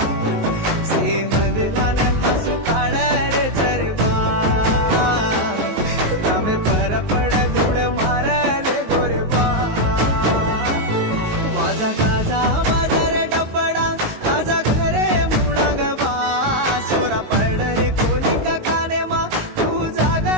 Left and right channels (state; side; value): late; left; 19 ms